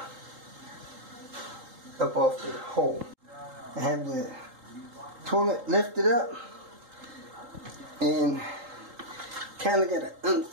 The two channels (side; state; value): left; late; 3.8 ms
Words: up off the hole. I have the toilet lifted up, and kind of got an